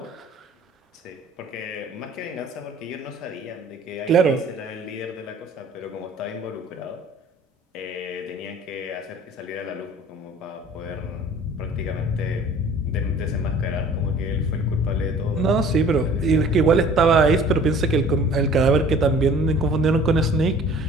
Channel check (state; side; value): normal; both; correlation 0.49